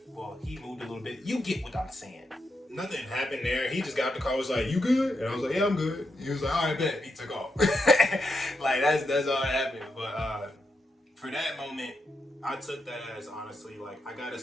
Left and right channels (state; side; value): normal; both; correlation 0.84